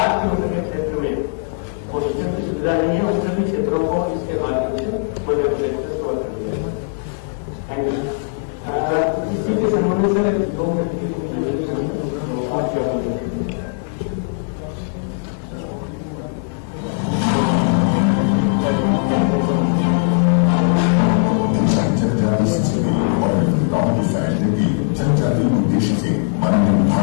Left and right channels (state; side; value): silent; right; digital silence